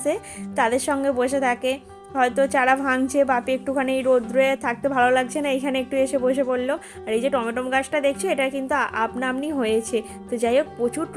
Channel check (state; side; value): identical; both; correlation 1.00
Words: তাদের সঙ্গে বসে থাকে, হয়তো চারা ভাঙছে, বাপি একটুখানি রোদ্রে থাকতে ভালো লাগছে না, এখানে একটু এসে বসে পড়লো। আর এই যে টমেটো গাছটা দেখছো, এটা কিন্তু আপনামনি হয়েছে। তো যাই হোক প্রচুর